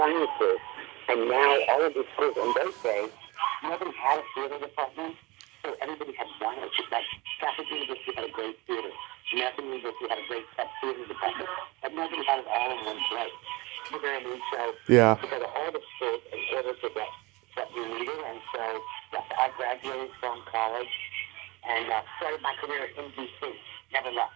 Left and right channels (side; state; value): left; quieter; 22.9 dB